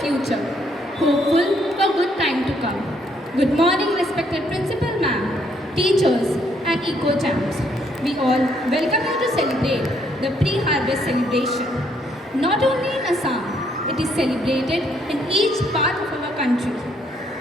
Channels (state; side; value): normal; both; correlation 0.70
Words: hopeful for good time to come. Good morning, respected Principal Ma'am, teachers and eco-champs. We all welcome you to celebrate the pre-harvest celebration. Not only in Assam, it is celebrated in each part of our country.